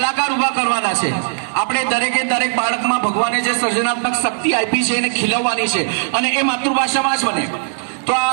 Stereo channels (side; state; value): left; silent; digital silence